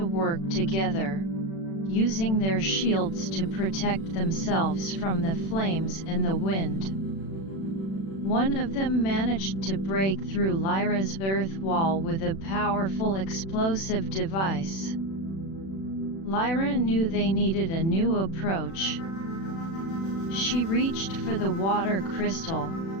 work together, using their shields to protect themselves from the flames and the wind. One of them managed to break through Lyra's earth wall with a powerful explosive device. Lyra knew they needed a new approach. She reached for the water crystal.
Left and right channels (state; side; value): late; right; 36 ms